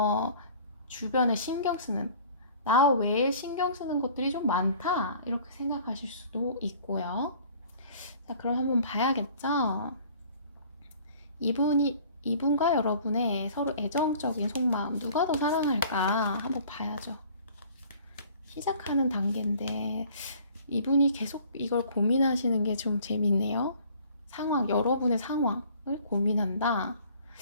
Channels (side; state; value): both; inverted; correlation -0.51